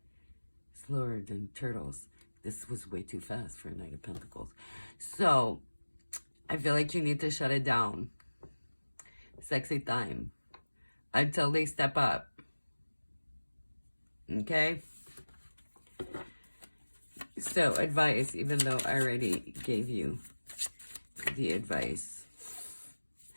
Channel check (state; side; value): inverted; both; correlation -1.00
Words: slower than turtles. This was way too fast for a Knight of Pentacles. So, I feel like you need to shut it down. Sexy time. Until they step up. Okay? So, advice, even though I already gave you the advice.